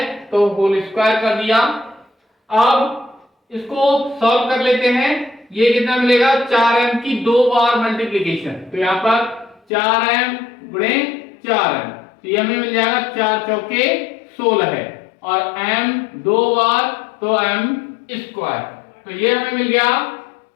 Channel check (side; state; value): right; drops out; at 9.6 s